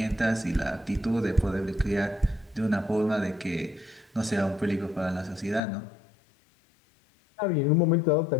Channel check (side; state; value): right; drops out; at 5.6 s